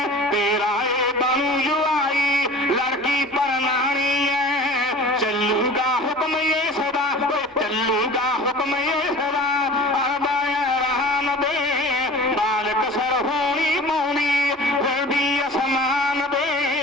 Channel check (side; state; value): both; normal; correlation 0.41